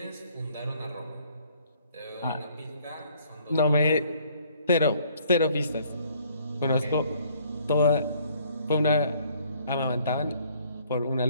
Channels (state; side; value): inverted; both; correlation -0.62